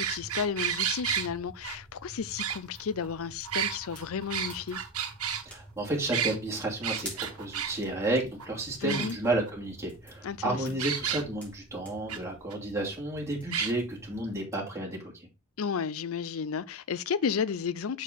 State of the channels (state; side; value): normal; both; correlation 0.19